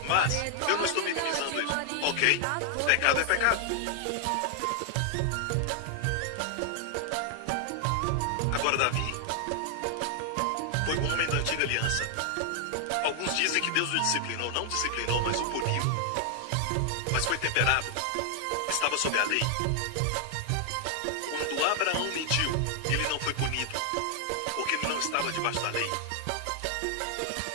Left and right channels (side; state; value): both; different; correlation 0.00